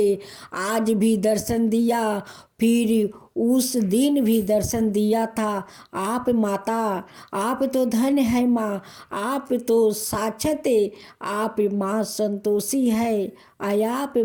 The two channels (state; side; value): identical; both; correlation 1.00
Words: आज भी दर्शन दिया, फिर उस दिन भी दर्शन दिया था। आप माता, आप तो धन है माँ, आप तो साक्षात आप माँ संतोषी है। आप